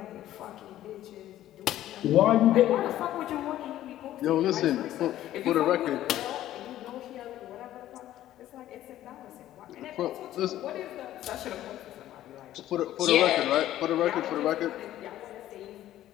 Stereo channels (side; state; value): right; quieter; 13.2 dB